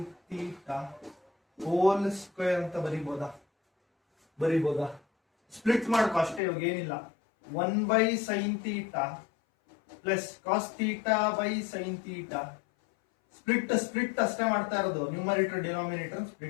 theta whole square ಅಂತ ಬರೀಬಹುದಾ? ಸ್ಪ್ಲಿಟ್ ಮಾಡ್ಕೊ ಅಷ್ಟೇ, ಇವಾಗ ಏನಿಲ್ಲ. 1/sin theta plus cos theta by sin theta. Split ಅಷ್ಟೇ ಮಾಡ್ತಾ ಇರೋದು. Numerator denominator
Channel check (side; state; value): right; drops out; at 6.4 s